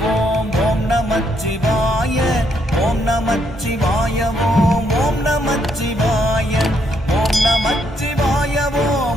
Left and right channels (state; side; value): normal; both; correlation 0.74